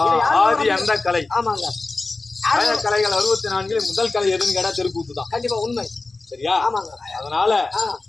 ஆதி அந்த கலை. ஆமாங்க. கலைகள் 64 முதல் கலை எதுன்னு கேட்டா தெருக்கூத்து தான். கண்டிப்பா உண்மை. சரியா? ஆமாங்க. அதனால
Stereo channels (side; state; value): right; quieter; 3.5 dB